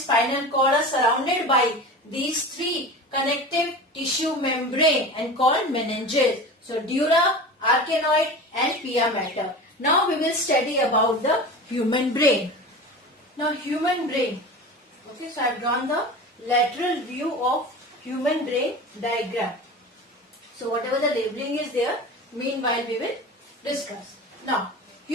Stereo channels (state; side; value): normal; both; correlation 0.32